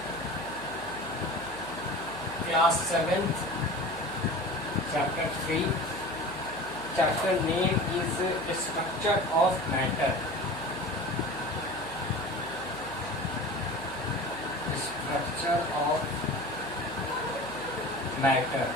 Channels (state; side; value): noise; right; hum, 18 dB below the sound